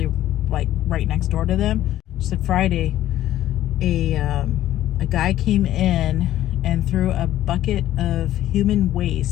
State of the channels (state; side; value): quieter; right; 13.3 dB